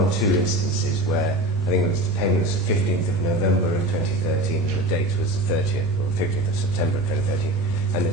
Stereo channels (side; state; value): both; normal; correlation 0.32